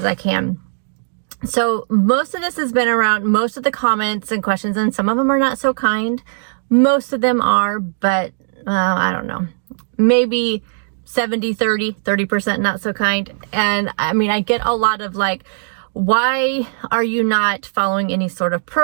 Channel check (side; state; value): left; silent; digital silence